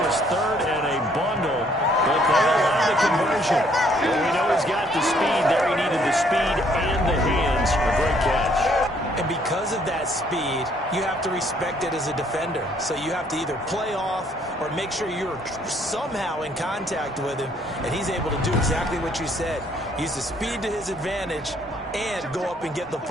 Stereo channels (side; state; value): both; normal; correlation 0.65